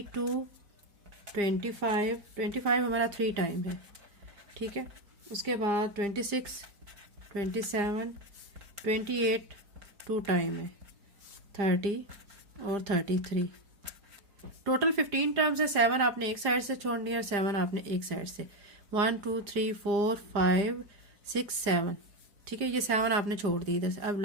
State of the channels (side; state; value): left; late; 4.9 ms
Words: 25 हमारा 3 टाइम है, ठीक है। उसके बाद 26, 27, 28 2 टाइम है, 30 और 33। टोटल 15 टर्म्स है। 7 आपने एक साइड से छोड़नी है और 7 आपने एक साइड से। 1 2 3 4 5 6 7, ठीक है। ये 7 आपने छोड़ दी इधर से। अब